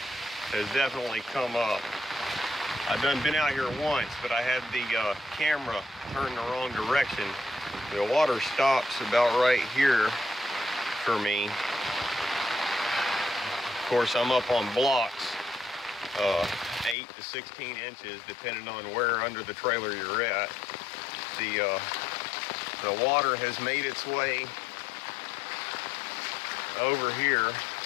has definitely come up. I've been out here once, but I had the camera turned the wrong direction. The water stops about right here for me. Of course, I'm up on blocks, 8 to 16 inches, depending on where under the trailer you're at. The water has made its way over here.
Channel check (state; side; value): drops out; right; at 16.9 s